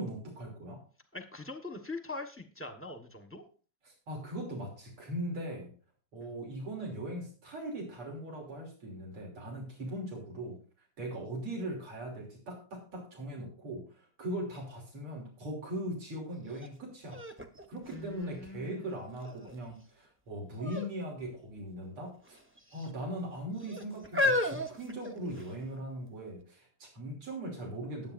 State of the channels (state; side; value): normal; both; correlation 0.11